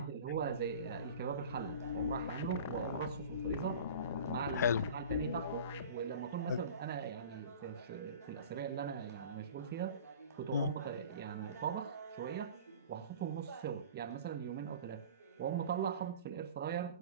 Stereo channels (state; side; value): inverted; both; correlation -0.40